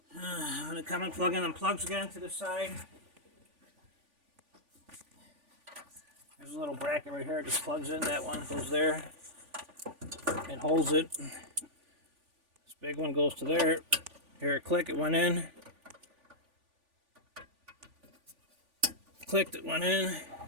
I'm going to come and plug in them plugs again to the side. There's a little bracket right here, it just plugs in, that one goes there. It holds it. This big one goes to there. Here it click, it went in. Clicked, it went in.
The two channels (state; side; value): late; left; 3.5 ms